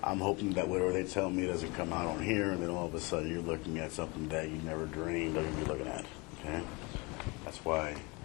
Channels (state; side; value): quieter; right; 27.3 dB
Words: I'm hoping that whatever they tell me doesn't come out on here, and then all of a sudden you're looking at something that you never dreamed of you'd be looking at, okay? That's why